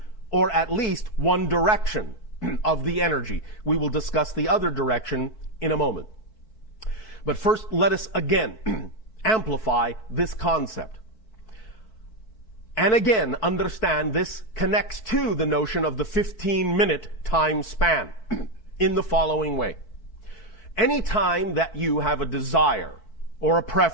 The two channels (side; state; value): right; late; 4.6 ms